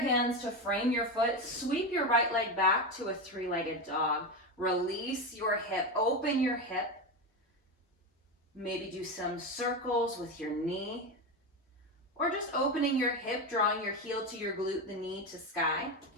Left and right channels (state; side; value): normal; both; correlation 0.16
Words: to frame your foot, sweep your right leg back to a three-legged dog. Release your hip, open your hip. Maybe do some circles with your knee, or just opening your hip, drawing your heel to your glute, the knee to sky,